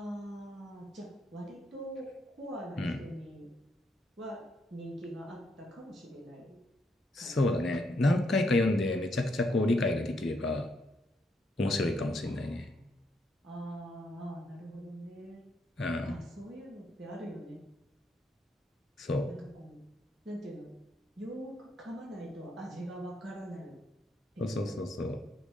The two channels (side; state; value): both; normal; correlation 0.76